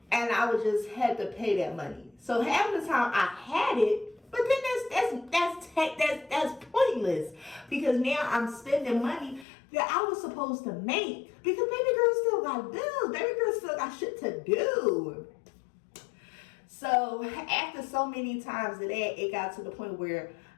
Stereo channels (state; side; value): drops out; right; at 9.5 s